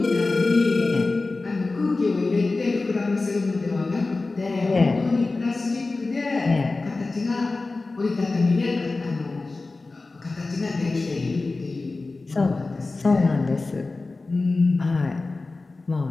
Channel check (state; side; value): quieter; right; 3.5 dB